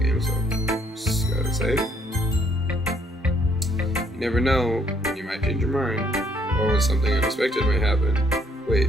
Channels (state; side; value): normal; both; correlation 0.67